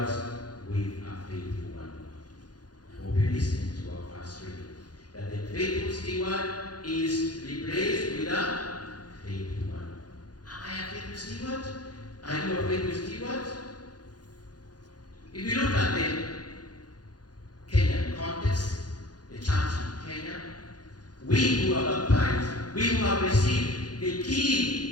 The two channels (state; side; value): late; right; 0.69 ms